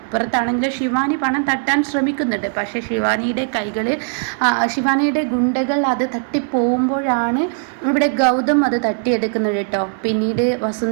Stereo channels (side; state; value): left; silent; 67 dB below the other